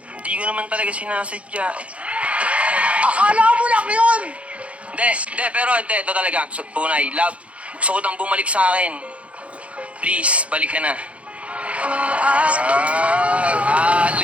hindi ko naman talaga sinasadya. Akala mo lang yun. Hindi, pero ito talaga, tunay, love. Gusto ko nang bumalik sa akin. Please, balik ka na.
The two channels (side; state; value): left; late; 0.063 ms